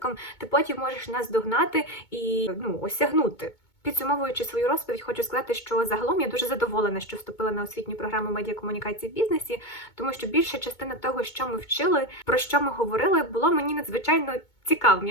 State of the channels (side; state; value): right; late; 2.2 ms